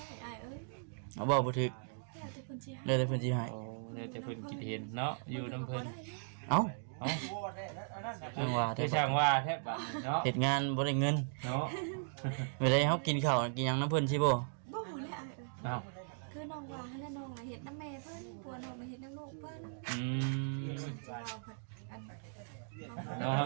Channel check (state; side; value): silent; left; digital silence